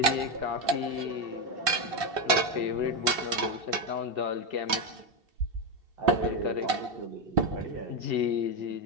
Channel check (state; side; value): late; left; 3.5 ms